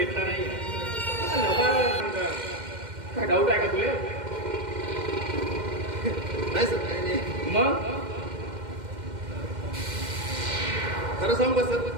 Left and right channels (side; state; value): left; late; 2.1 ms